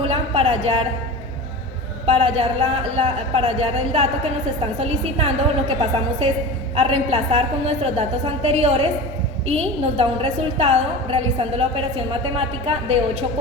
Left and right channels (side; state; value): both; normal; correlation 0.31